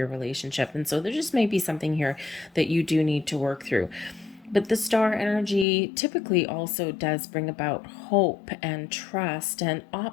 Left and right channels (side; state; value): right; drops out; at 5.7 s